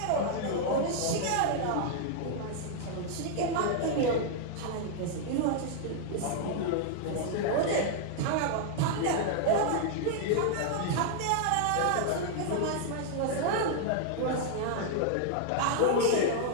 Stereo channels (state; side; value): different; both; correlation -0.01